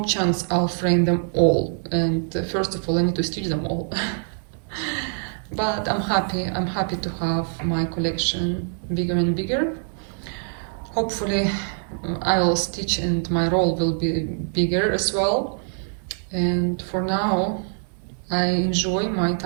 chance I'll frame them all, and first of all I need to stitch them all. But I'm happy to have my collection bigger and bigger. Hopefully I will stitch and my roll will be bigger as well. And for now I enjoy my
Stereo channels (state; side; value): silent; left; 63 dB below the other